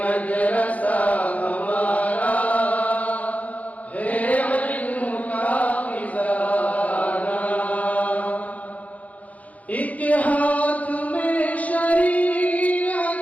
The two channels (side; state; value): right; late; 0.070 ms